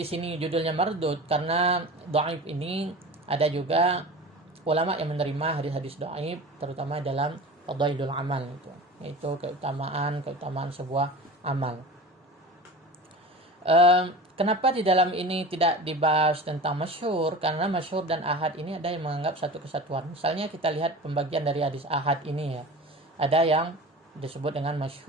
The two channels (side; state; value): both; normal; correlation 0.35